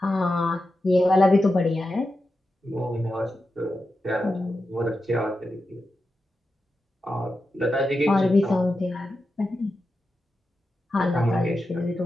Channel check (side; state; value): both; normal; correlation 0.90